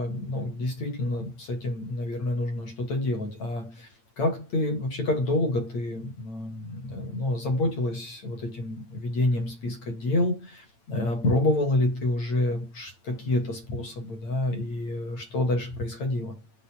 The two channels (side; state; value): right; late; 8.8 ms